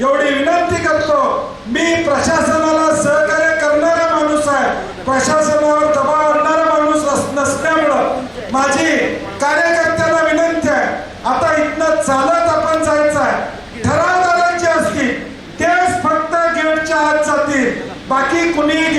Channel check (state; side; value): identical; both; correlation 1.00